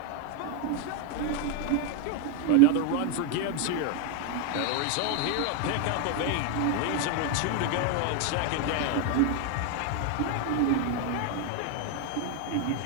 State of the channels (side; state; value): both; different; correlation 0.01